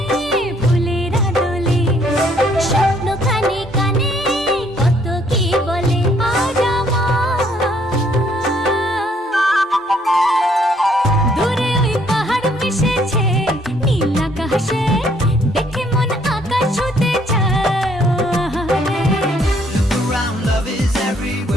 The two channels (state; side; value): normal; both; correlation 0.66